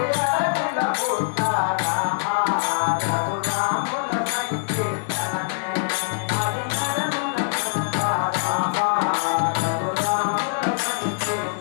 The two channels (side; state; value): right; silent; digital silence